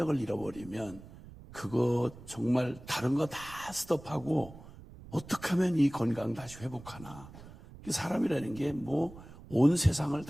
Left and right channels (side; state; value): right; noise; rumble, 18 dB below the sound